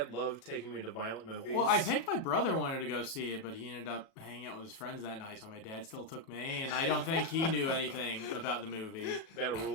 loved taking me to violent movies. Well, I think my brother wanted to go see it, but he ended up hanging out with his friends that night, so my dad still took me, and I don't think he knew anything about the movie. that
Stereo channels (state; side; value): late; right; 37 ms